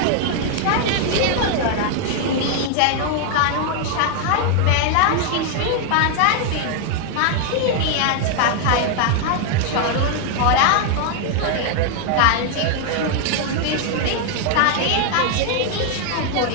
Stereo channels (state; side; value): different; both; correlation 0.00